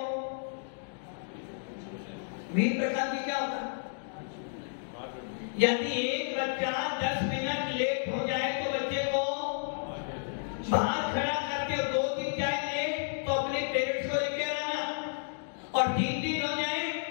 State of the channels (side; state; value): right; silent; digital silence